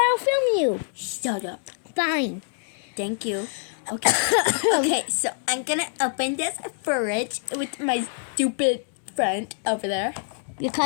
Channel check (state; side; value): silent; right; 62 dB below the other